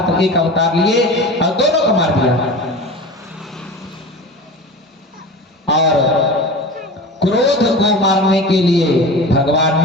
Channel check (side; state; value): both; normal; correlation 0.33